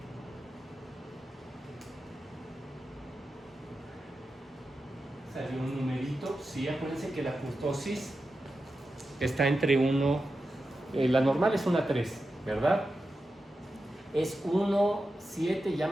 Salió un numerito. Sí, acuérdense que la kurtosis está entre 1, la normal es una 3, ¿verdad? Es 1, 7, ya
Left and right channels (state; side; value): normal; both; correlation 0.91